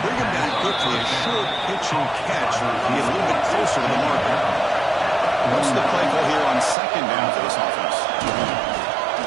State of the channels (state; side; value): drops out; left; at 6.8 s